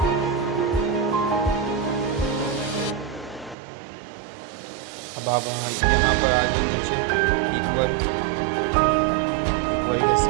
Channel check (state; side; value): drops out; left; at 3.6 s